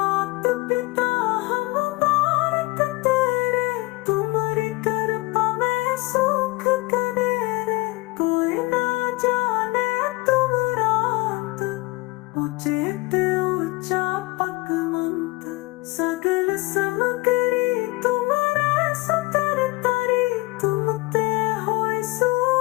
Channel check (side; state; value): right; quieter; 23.0 dB